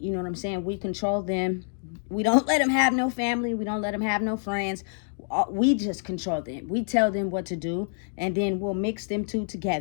know what I'm saying, we control them. We don't let them have no family. We don't let them have no friends. We just control them. We tell them what to do, and then we'll mix them two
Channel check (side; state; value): right; silent; 60 dB below the other